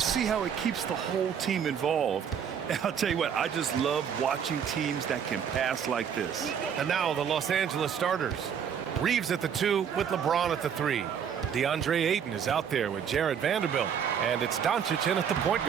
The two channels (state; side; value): quieter; left; 7.9 dB